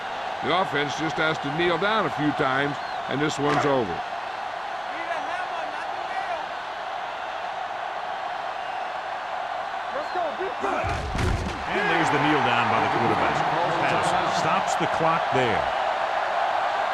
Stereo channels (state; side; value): identical; both; correlation 1.00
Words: The offense just has to kneel down a few times, and this one's over. And there's the kneel down by the quarterback. Patterson stops the clock there.